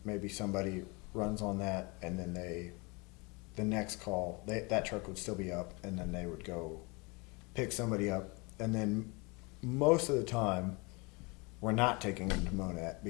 maybe somebody runs on that, and then the next call, that truck would still be up, and then they would go pick somebody up. And then most of the time, we're not taking them to Monette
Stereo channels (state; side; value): quieter; right; 28.4 dB